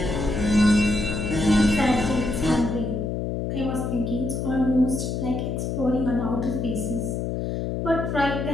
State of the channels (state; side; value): noise; left; hum, 2 dB below the sound